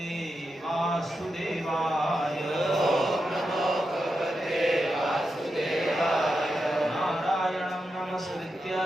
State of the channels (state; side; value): normal; both; correlation 0.87